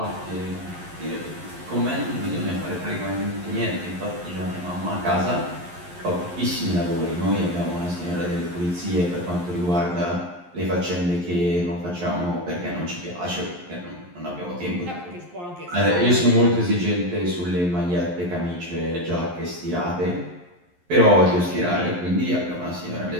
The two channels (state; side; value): late; left; 11 ms